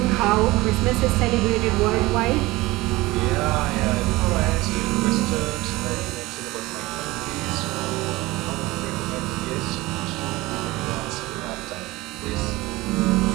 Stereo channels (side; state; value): left; quieter; 20.3 dB